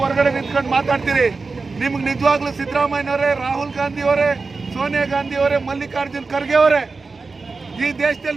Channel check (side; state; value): left; quieter; 4.1 dB